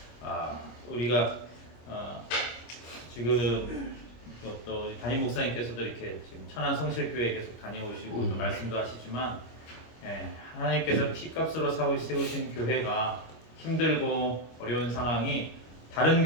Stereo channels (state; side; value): late; right; 25 ms